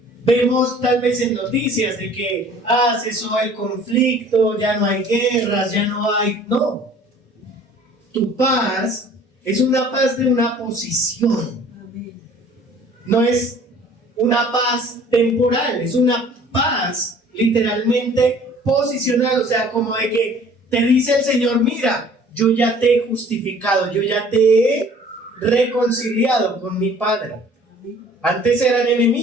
vemos tal vez en noticias de que cesó el conflicto, ya no hay guerras, ya no hay... No, tu paz es una paz de una posición. No es una paz temporal, es una paz literalmente posicional, o sea, como de que te dice el Señor, mira, yo ya te he justificado, yo ya te he reconciliado con mi Padre. Antes eran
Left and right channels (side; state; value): both; normal; correlation 0.51